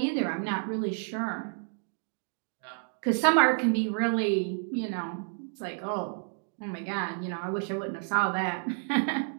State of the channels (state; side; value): silent; left; 56 dB below the other